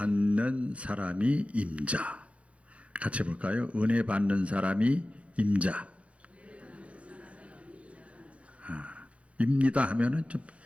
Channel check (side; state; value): left; late; 0.063 ms